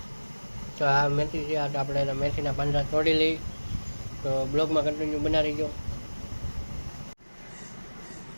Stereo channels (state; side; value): inverted; both; correlation -1.00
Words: તો આ મેથી છે, આ આપણે એના મેથીના પાંદડા તોડી લઈ. તો બ્લોગમાં કન્ટિન્યુ બનાવી ગયો.